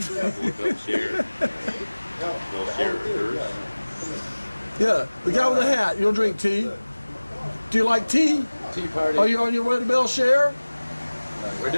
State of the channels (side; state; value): both; inverted; correlation -1.00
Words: Yeah, the guy with the hat. You'll drink tea. Do you like tea? Tea party. Are you on your way to Bele Chere? We're